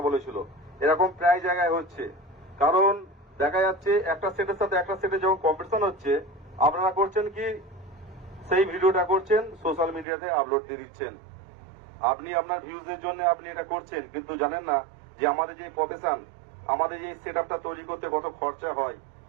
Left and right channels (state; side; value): drops out; left; at 10.1 s